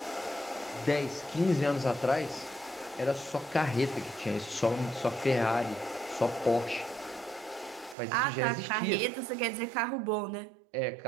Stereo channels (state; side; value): drops out; left; at 8.0 s